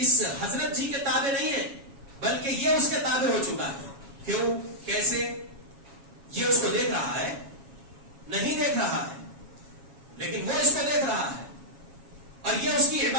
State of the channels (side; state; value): left; late; 7.3 ms